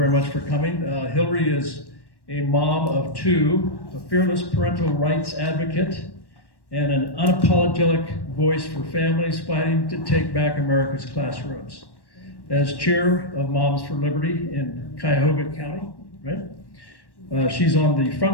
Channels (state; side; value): late; right; 1.1 ms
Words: much for coming. Hilary is a mom of two, a fearless parental rights advocate, and an unapologetic voice for families fighting to take back America's classrooms. As chair of Moms for Liberty in Cuyahoga County, right? She's on the